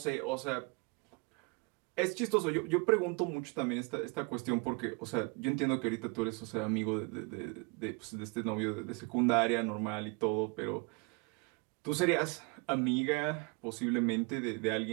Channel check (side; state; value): left; quieter; 31.0 dB